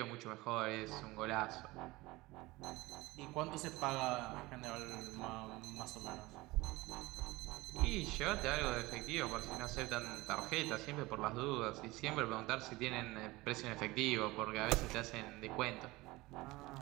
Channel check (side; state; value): left; quieter; 20.8 dB